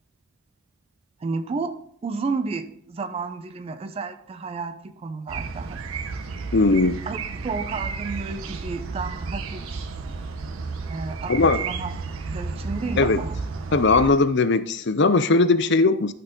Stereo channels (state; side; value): normal; both; correlation 0.15